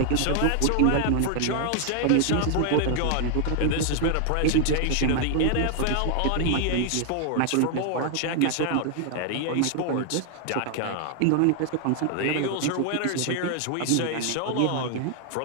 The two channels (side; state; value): both; different; correlation 0.00